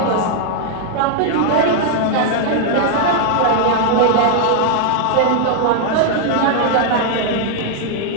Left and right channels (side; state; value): both; different; correlation 0.00